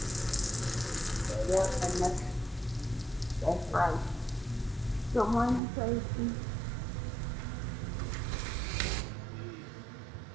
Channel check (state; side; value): drops out; left; at 5.6 s